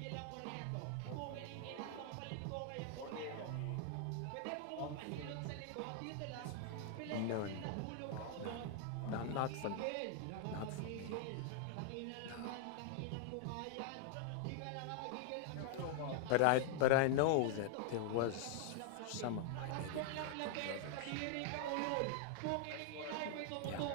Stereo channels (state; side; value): different; both; correlation 0.00